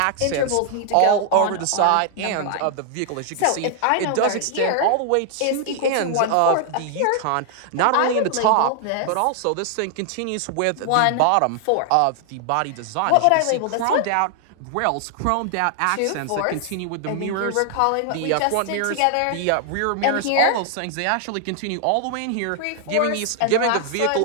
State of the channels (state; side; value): different; both; correlation 0.00